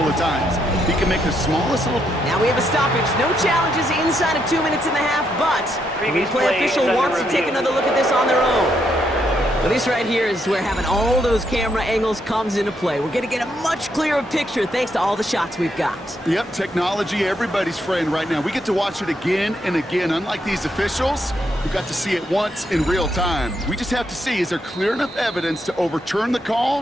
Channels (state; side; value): normal; both; correlation 0.77